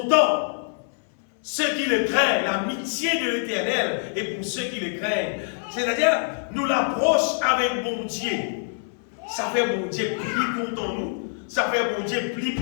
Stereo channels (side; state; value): right; silent; 60 dB below the other